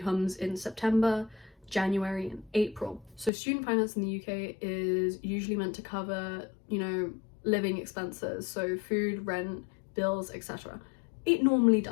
comes in September, January and April. So student finance in the UK is usually meant to cover, you know, living expenses, so food, rent, bills, etc. It normally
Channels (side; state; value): right; drops out; at 3.3 s